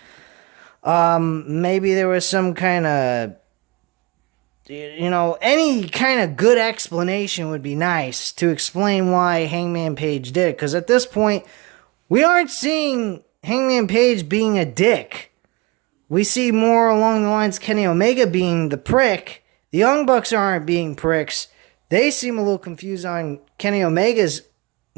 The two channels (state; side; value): quieter; left; 24.5 dB